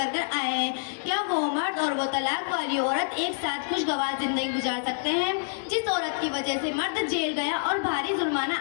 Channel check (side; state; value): right; silent; digital silence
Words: कर आए हैं, क्या वो मर्द और वो तलाक वाली औरत एक साथ खुशगवार जिंदगी गुजार सकते हैं? जिस औरत की वजह से मर्द जेल गया और भारी